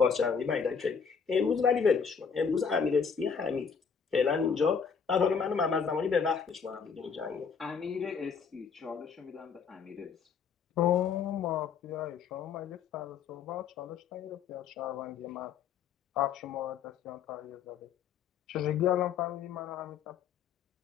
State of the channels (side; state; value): right; quieter; 6.3 dB